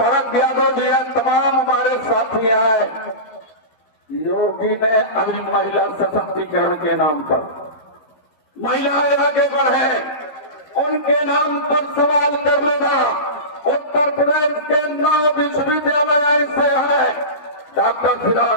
यादव जी है, तमाम हमारे साथी हैं। योगी ने अभी महिला सशक्तिकरण के नाम पर महिलाएं आगे बढ़े, उनके नाम पर सवाल कर लेना। उत्तर प्रदेश के 9 विश्वविद्यालय ऐसे हैं, डॉक्टर फिदा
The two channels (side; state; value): right; late; 14 ms